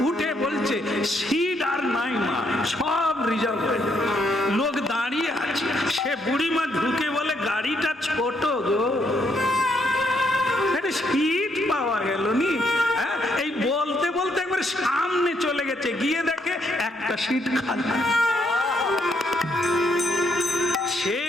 উঠে বলছে সিট আর নাই মা, সব রিজার্ভ হয়ে যাবে, লোক দাঁড়িয়ে আছে। সে বুড়িমা ঢুকে বলে গাড়িটা ছোট গো, সিট পাওয়া গেল নি। এই বলতে বলতে একবার সামনে চলে গেছে, গিয়ে দেখে একটা সিট খালি। সে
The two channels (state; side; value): normal; both; correlation 0.74